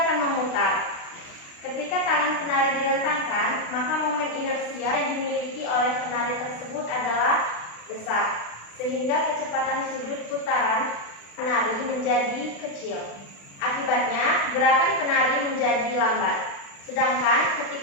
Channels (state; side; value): late; right; 36 ms